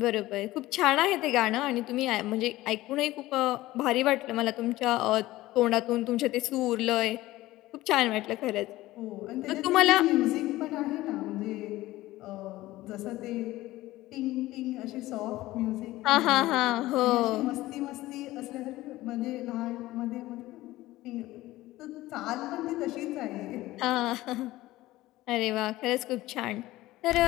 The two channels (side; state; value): right; quieter; 17.2 dB